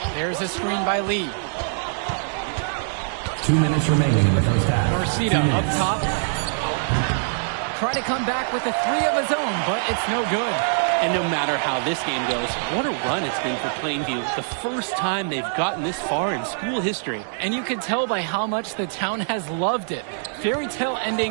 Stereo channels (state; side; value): silent; left; digital silence